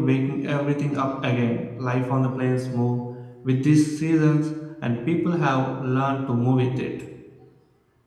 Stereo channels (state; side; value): identical; both; correlation 1.00